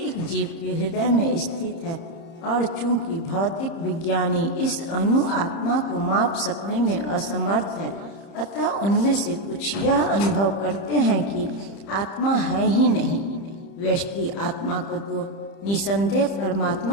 जीव के हृदय में स्थित है और चूंकि भौतिक विज्ञानी इस अनु आत्मा को माप सकने में असमर्थ है, अतः उनमें से कुछ यह अनुभव करते हैं कि आत्मा है ही नहीं। व्यष्टि आत्मा को तो निसंदेह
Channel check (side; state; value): right; late; 30 ms